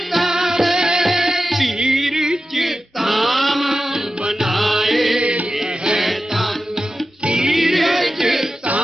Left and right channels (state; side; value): normal; both; correlation 0.93